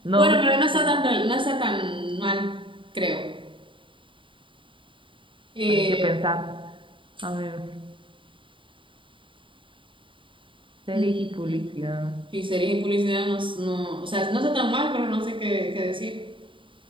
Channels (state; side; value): late; left; 0.25 ms